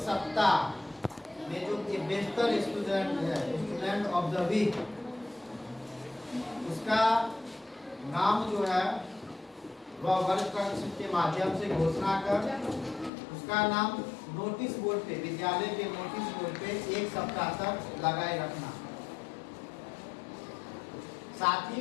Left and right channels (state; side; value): drops out; right; at 13.1 s